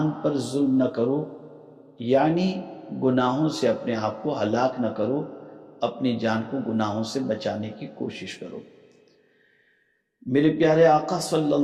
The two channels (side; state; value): both; identical; correlation 1.00